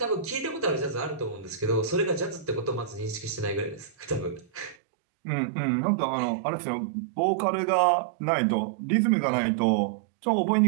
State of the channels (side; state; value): left; drops out; at 4.8 s